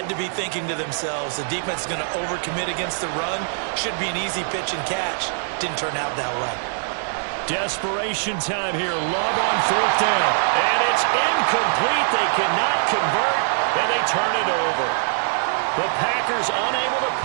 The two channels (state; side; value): silent; left; digital silence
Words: to be thinking to themselves, the defense is going to overcommit against the run. Should be an easy pitch and catch. Didn't turn out that way. Desperation time here. Love on 4th down. And it's incomplete. They cannot convert, and they turn it over. The Packers unable to